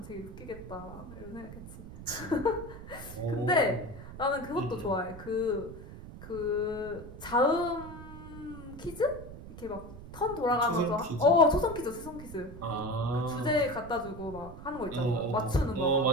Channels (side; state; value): right; noise; rumble, 13 dB below the sound